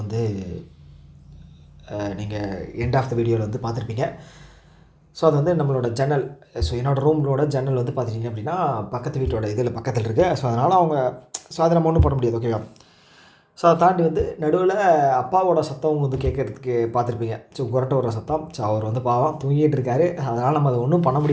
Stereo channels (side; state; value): both; identical; correlation 1.00